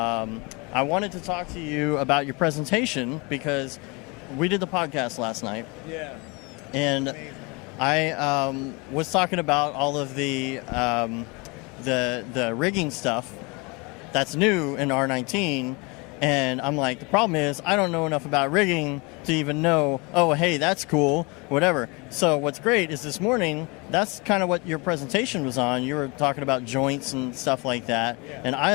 wanted to talk to you about your presentation because we did the podcast last night. Yeah. And amazing. I was talking about all of the rigging stuff that's new in R19, and I'm like, the problem is I don't know enough about rigging to even know, oh, hey, that's cool, whatever. So what's great is this morning, that's kind of what your presentation was on. You were talking about joints and stuff like that, and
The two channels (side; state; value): right; quieter; 27.9 dB